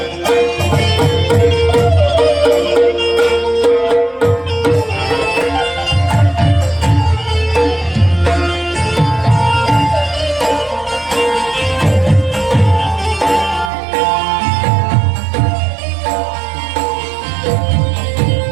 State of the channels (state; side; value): drops out; left; at 13.7 s